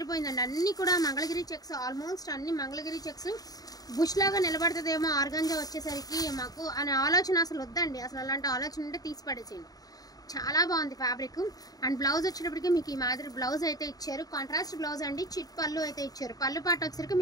అన్నీ కూడా మంగళగిరి చెక్స్, ఆల్మోస్ట్ అన్ని మంగళగిరి చెక్స్। బుష్ లాగా నిలబడుతుందేమో ఆర్గంజా వచ్చేసరికి మాకు అనే ఆలోచన అసలు వద్దండి, అసలు అలాంటి ఆలోచన ఉంటే తీసి పడేసేయండి। చాలా బాగుంది ఫ్యాబ్రిక్। అండ్ బ్లౌజ్ వచ్చేటప్పటికి మీకు ఈ మాదిరి బ్లౌజ్ అయితే ఇచ్చారు, కాంట్రాస్ట్ బ్లౌజ్ అండి। చిట్ పళ్ళు అయితే ఇచ్చారు, పళ్ళు పాట వచ్చేసరికి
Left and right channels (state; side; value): late; right; 0.18 ms